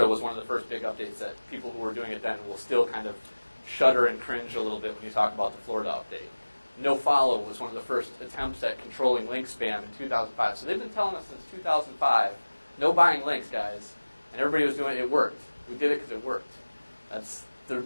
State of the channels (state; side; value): inverted; both; correlation -1.00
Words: was one of the first big updates that people who were doing it then will still kind of shudder and cringe a little bit when you talk about the Florida update. No follow was one of the first attempts at controlling link spam in 2005. So they've been telling us since 2005, no buying links, guys. And everybody was doing it. It worked. We did it because it worked. That's the